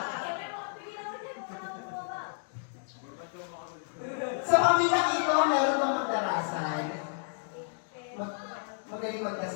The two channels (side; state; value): right; silent; digital silence